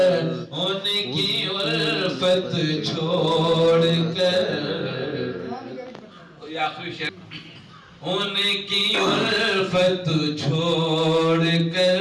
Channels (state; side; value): identical; both; correlation 1.00